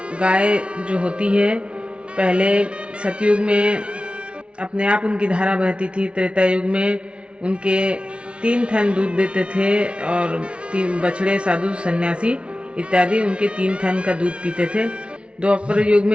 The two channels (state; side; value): late; left; 0.059 ms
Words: गाय जो होती है, पहले सतयुग में अपने आप उनकी धारा बहती थी, त्रेता युग में उनके 3 थन दूध देते थे और 3 बछड़े, साधु, सन्यासी इत्यादि उनके 3 थन का दूध पीते थे। द्वापर युग